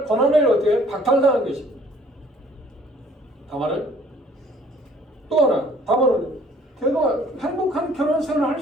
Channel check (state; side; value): normal; both; correlation 0.57